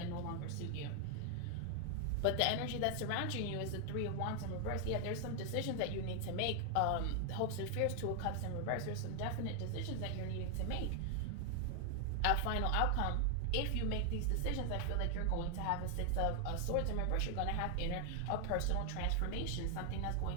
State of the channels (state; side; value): different; both; correlation 0.00